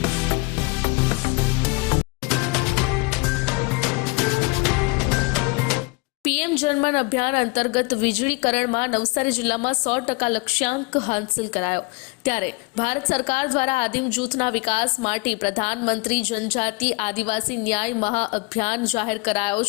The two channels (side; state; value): right; quieter; 27.7 dB